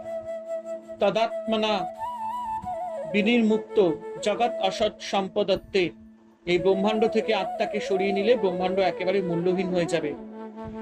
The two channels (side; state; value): both; identical; correlation 1.00